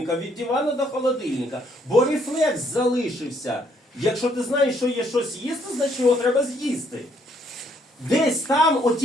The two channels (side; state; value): both; normal; correlation 0.69